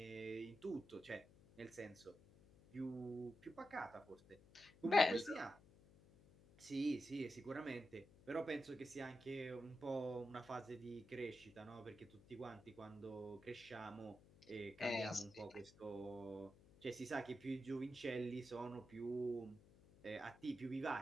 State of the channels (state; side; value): noise; left; hum, 23 dB below the sound